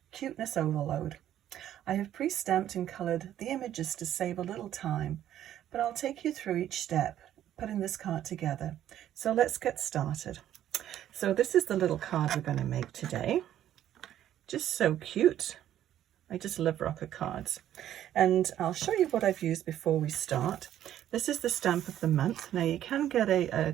cuteness overload. I have pre-stamped and coloured the images to save a little time, but I'll take you through each step putting this card together. So let's get started. So this is the little card we're going to make today. Just so cute. I just love rocker cards. And I'll show you what I've used before we start. This is the stamp of the month. Now you can get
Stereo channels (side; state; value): left; quieter; 11.6 dB